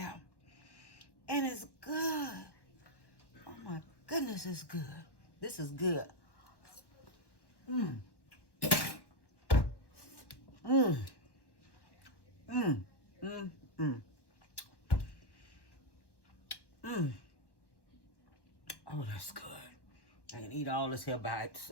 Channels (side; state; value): right; late; 1.1 ms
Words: And it's good. Oh my goodness, it's good. This is good. Oh, that's good. I can eat all this here by